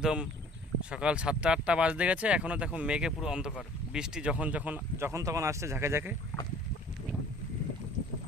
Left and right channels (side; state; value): both; normal; correlation 0.51